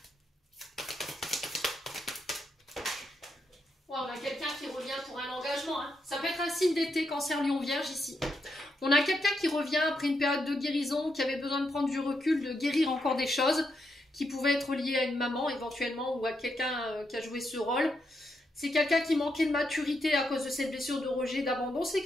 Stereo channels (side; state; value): both; normal; correlation 0.82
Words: On a quelqu'un qui revient pour un engagement. Hein. Ça peut être un signe d'été, Cancer, Lion, Vierge ici. On a quelqu'un qui revient après une période de guérison, qui avait besoin de prendre du recul, de guérir encore des choses, qui pouvaient être liées à une maman éventuellement ou à quelqu'un qui a joué ce rôle. C'est quelqu'un qui manquait de maturité à cause de cette blessure de rejet, d'abandon. C'est